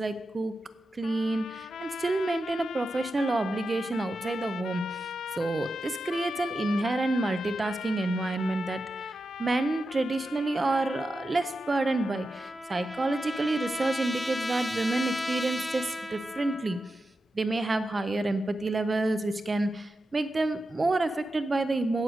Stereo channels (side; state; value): both; normal; correlation 0.90